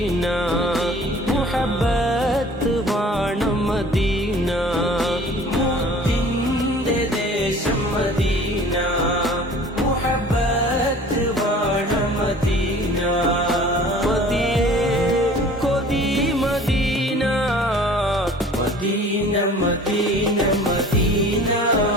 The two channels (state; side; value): normal; both; correlation 0.47